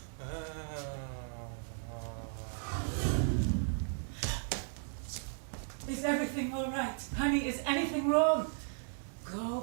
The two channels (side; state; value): left; silent; 54 dB below the other